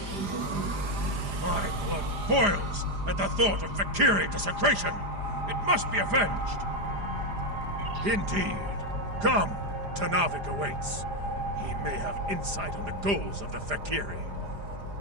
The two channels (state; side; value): late; left; 4.9 ms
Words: My blood boils at the thought of Fek'ihri desecration. It must be avenged. Indeed. Come, Tanavik awaits. He may have insight on the goals of the Fek'ihri.